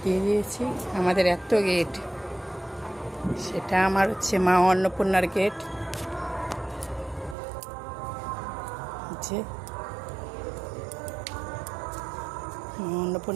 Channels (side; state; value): left; drops out; at 7.4 s